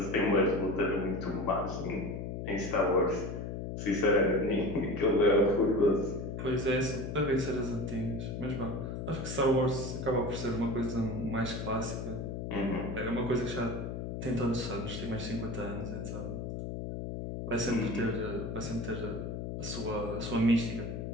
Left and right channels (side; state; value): left; noise; hum, 5 dB below the sound